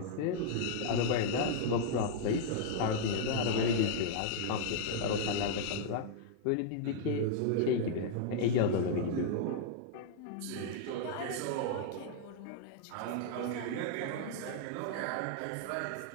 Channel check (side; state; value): both; different; correlation -0.01